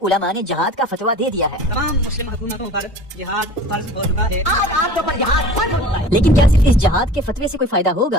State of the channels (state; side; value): normal; both; correlation 0.41